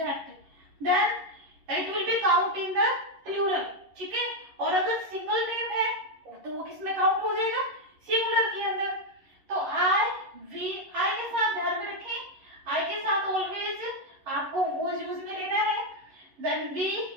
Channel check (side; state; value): left; late; 11 ms